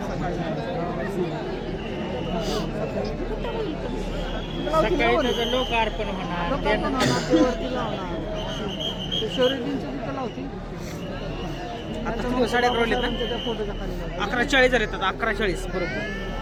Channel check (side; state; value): both; identical; correlation 1.00